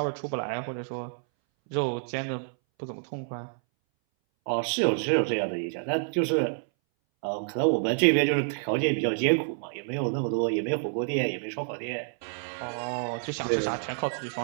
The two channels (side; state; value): left; silent; 59 dB below the other